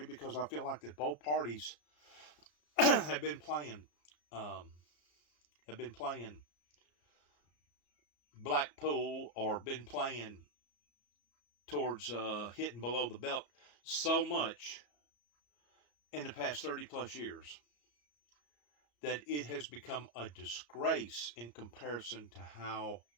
because I feel like that both parties have been playing Blackpool, or been playing towards hitting below the belt so much in the past 30 plus years that it has become a disgrace in comparison to how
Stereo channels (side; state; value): right; late; 34 ms